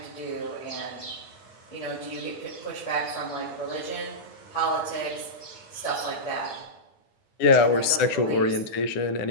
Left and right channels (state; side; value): late; right; 9.8 ms